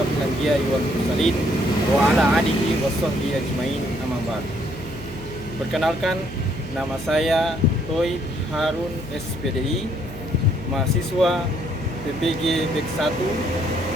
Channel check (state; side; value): noise; right; hum, 14 dB below the sound